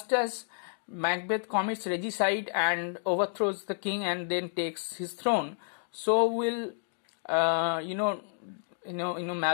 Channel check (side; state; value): right; silent; digital silence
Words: as Macbeth commits regicide and overthrows the king and then takes his throne, so will